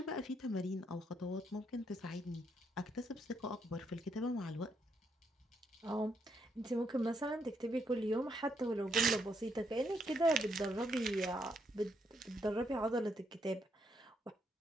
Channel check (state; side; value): normal; both; correlation 0.76